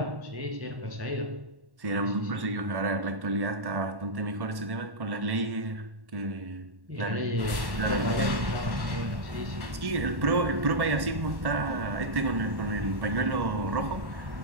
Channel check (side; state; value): left; late; 1.1 ms